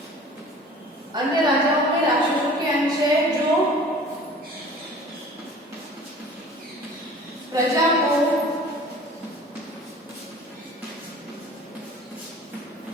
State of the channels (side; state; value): both; normal; correlation 0.45